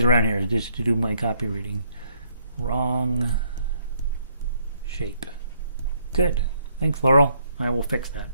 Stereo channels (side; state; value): both; inverted; correlation -0.69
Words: around here, just to do my copy reading. Wrong shape. Good. Thanks, Laurel. I will fix that.